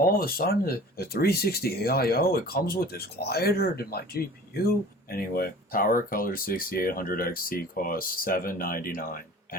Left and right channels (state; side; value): normal; both; correlation 0.44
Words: of a sudden, the 360 AIO, it comes with this quieter than my GPU. Anyway, Power Color 6800 XT costs $799.